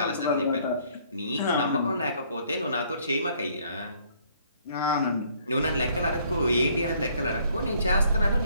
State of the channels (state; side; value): inverted; both; correlation -0.63